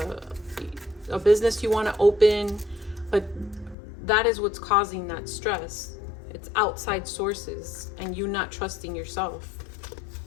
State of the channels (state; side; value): drops out; right; at 3.8 s